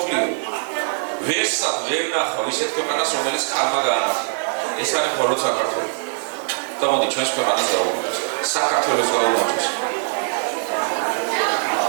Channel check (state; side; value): silent; left; 65 dB below the other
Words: ვერსად ვერ ნახავ ისეთ ქვეყანას, რომელიც ქალმა გაანახა. ეს არის მხოლოდ საქართველო. და მოდი ჩვენს ქვეყანას გაუმარჯოს. საქართველოს გაუმარჯოს.